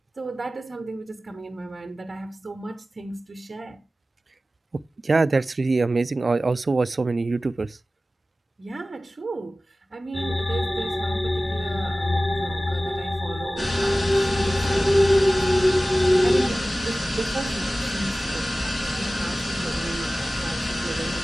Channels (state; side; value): normal; both; correlation 0.96